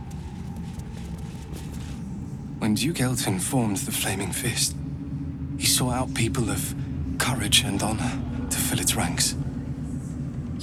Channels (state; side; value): identical; both; correlation 1.00